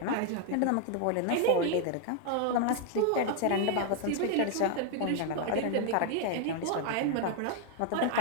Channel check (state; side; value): different; both; correlation 0.00